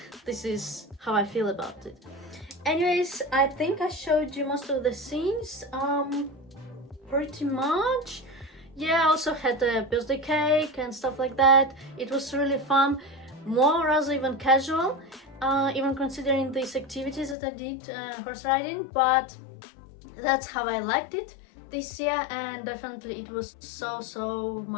This is how I feel about it. Anyways, I think I showed you most of the scenes, pretty much. Yeah, I also had a birthday cake and stuff like that. It was really fun, more rather even casual, even considering these activities that I did, horse riding, but that's how I liked it this year, and definitely it was so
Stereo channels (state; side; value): drops out; right; at 17.4 s